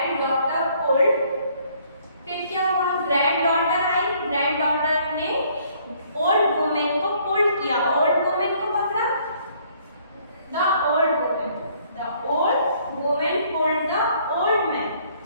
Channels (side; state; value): both; inverted; correlation -0.63